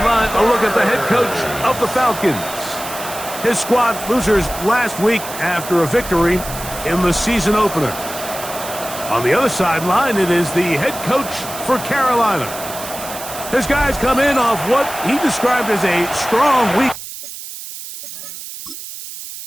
a look at the head coach of the Falcons. His squad losers last week after a victory in the season opener. On the other sideline, it is the head coach for Carolina. His guys come in off what he described as a strong week.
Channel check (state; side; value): noise; right; hiss, 11 dB below the sound